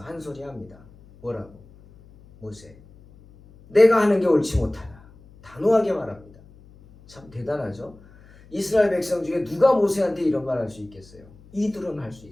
한 소리 합니다. 뭐라고? 모세, 내가 하는 게 옳지 못하다. 단호하게 말합니다. 참 대단하죠? 이스라엘 백성 중에 누가 모세한테 이런 말 할 수 있겠어요? 이드로는 할 수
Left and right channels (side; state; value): left; noise; hum, 24 dB below the sound